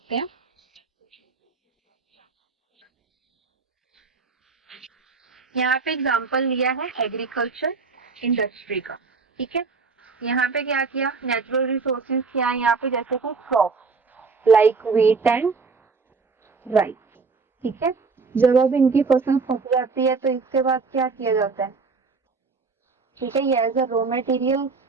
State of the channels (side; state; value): left; quieter; 4.6 dB